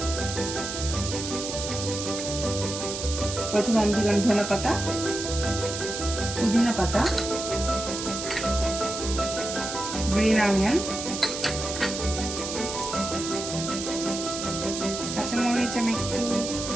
প্রথমে আমি দিলাম ধনে পাতা, পুদিনা পাতা, গ্রিন অনিয়ন, কাঁচামরিচ আমি একটু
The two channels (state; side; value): noise; right; hiss, 6 dB below the sound